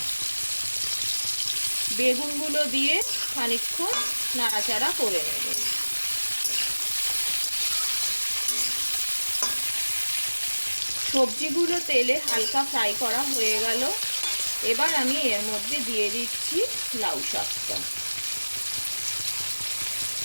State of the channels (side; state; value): both; inverted; correlation -1.00